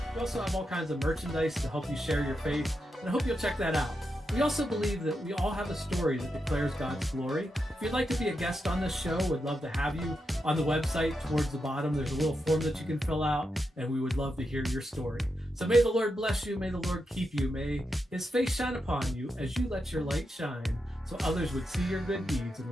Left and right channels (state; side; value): normal; both; correlation 0.86